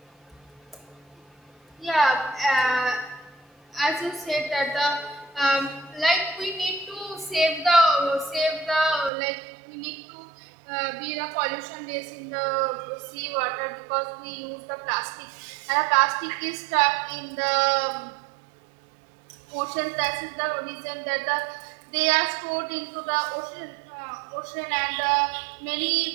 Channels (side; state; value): left; drops out; at 9.1 s